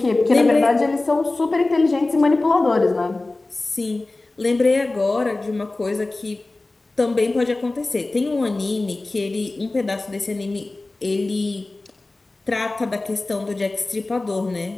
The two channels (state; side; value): quieter; right; 3.1 dB